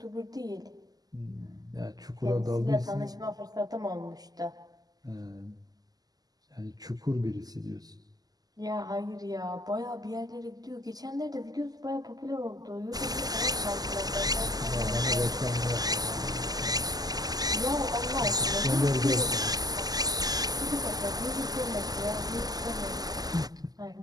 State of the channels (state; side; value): late; left; 0.18 ms